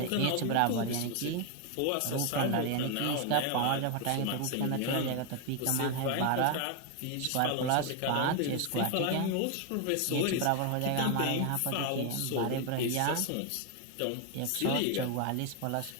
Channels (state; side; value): different; both; correlation 0.01